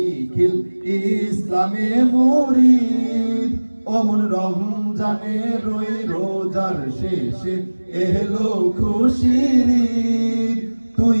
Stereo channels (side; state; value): both; inverted; correlation -1.00